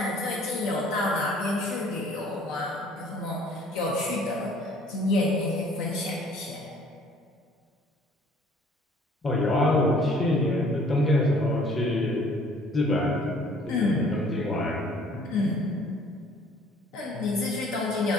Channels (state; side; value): normal; both; correlation 0.56